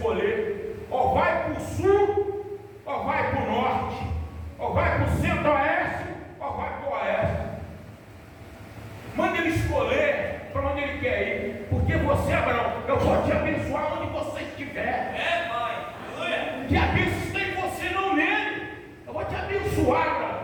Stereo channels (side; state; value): both; identical; correlation 1.00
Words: ou vai para o sul, ou vai para o norte, ou vai para o centro-oeste, ou vai para o oeste. Manda ele escolher para onde ele quer ir, porque você, Abraão, eu vou te abençoar onde você estiver. É, pai. Aleluia. Que a bênção está em você, não nele. Eu vou te abençoar, Abraão.